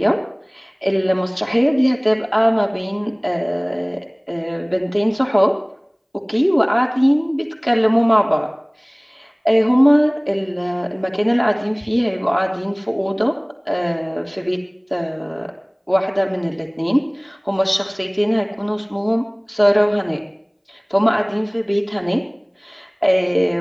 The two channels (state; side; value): identical; both; correlation 1.00